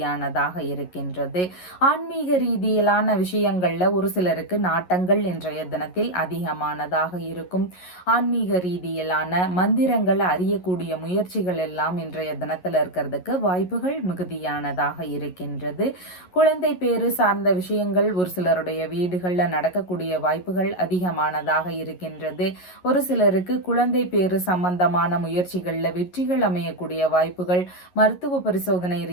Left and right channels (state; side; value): late; right; 11 ms